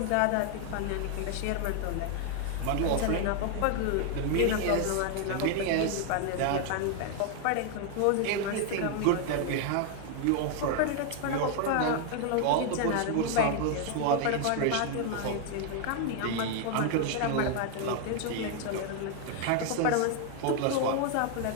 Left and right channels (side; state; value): both; different; correlation 0.00